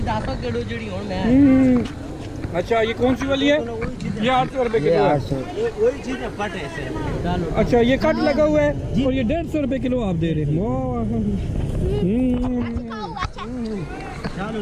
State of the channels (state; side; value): identical; both; correlation 1.00